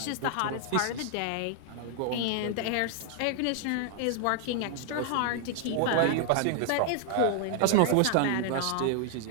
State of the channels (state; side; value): different; both; correlation 0.00